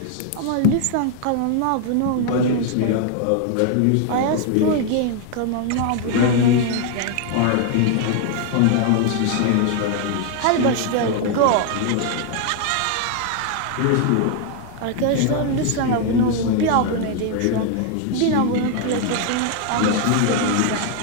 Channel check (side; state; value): both; different; correlation 0.00